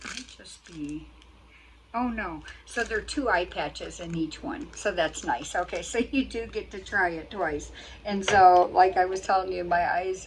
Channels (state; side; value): identical; both; correlation 1.00